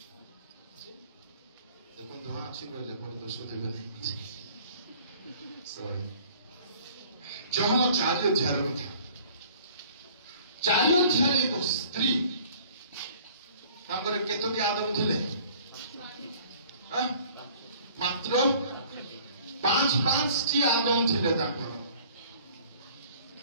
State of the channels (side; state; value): both; inverted; correlation -0.52